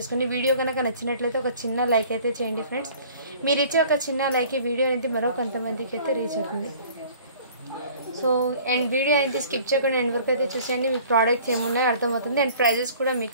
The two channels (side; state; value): both; inverted; correlation -0.50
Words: వీడియో గనుక నచ్చినట్లయితే ఒక చిన్న లైక్ అయితే చేయండి ఫ్రెండ్స్ మీరు ఇచ్చే ఒక చిన్న లైక్ ఈ వీడియో అనేది మరో కొంతమందికి అయితే రీచ్ అవుతుంది సో అండ్ వీడియో అయితే స్కిప్ చేయకుండా ఎండ్ వరకు అయితే చూసేయండి మీ ప్రోడక్ట్స్ ఏమున్నాయో అర్థమవుతుంది అండ్ ప్రైజెస్ కూడా